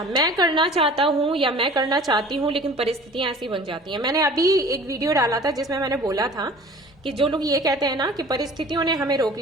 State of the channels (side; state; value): both; normal; correlation 0.45